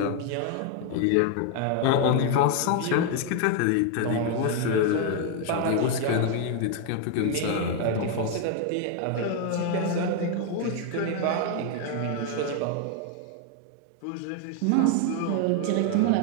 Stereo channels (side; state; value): both; different; correlation 0.01